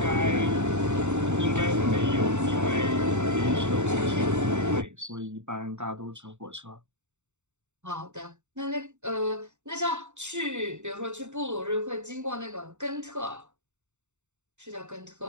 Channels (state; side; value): late; left; 0.84 ms